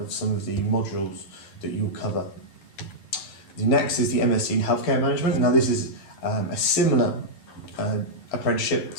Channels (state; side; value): late; right; 11 ms